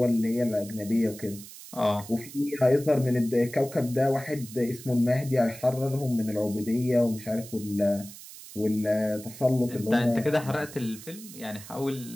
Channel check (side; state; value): right; noise; hiss, 16 dB below the sound